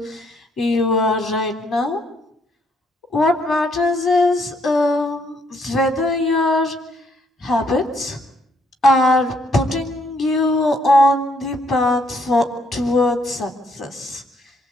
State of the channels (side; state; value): both; normal; correlation 0.70